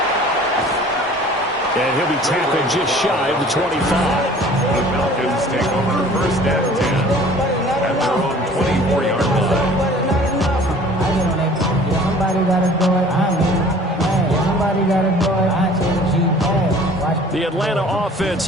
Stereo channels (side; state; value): both; normal; correlation 0.49